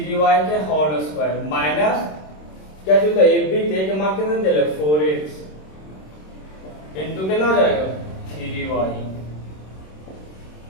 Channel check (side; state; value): right; late; 26 ms